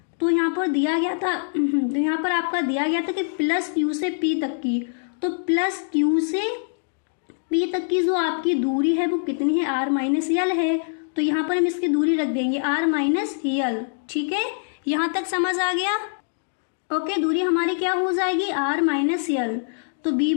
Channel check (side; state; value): right; silent; digital silence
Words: तो यहाँ पर दिया गया था, तो यहाँ पर आपका दिया गया था कि प्लस क्यू से पी तक की, तो प्लस क्यू से पी तक की जो आपकी दूरी है वो कितनी है, आर माइनस यल है। तो यहाँ पर हम इसकी दूरी रख देंगे आर माइनस यल, ठीक है। यहाँ तक समझ आ गया, ओके। दूरी हमारी क्या हो जाएगी, आर माइनस यल। तो